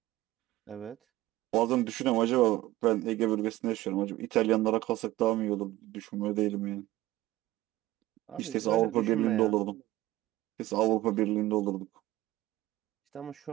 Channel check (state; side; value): quieter; left; 16.6 dB